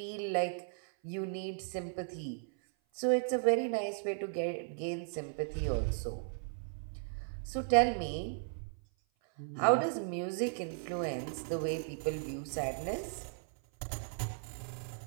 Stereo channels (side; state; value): left; silent; 54 dB below the other